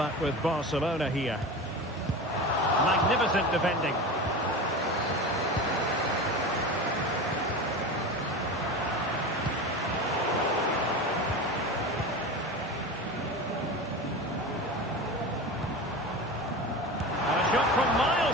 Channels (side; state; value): both; normal; correlation 0.28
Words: with Barcelona here. Magnificent defending. And a shot from